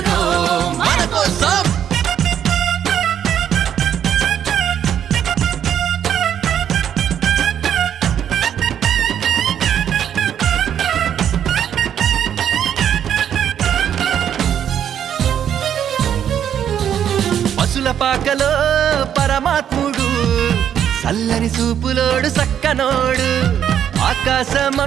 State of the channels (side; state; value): left; quieter; 9.4 dB